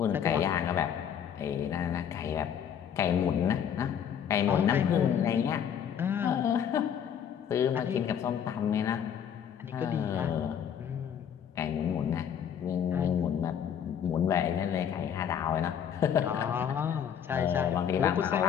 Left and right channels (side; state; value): right; quieter; 8.6 dB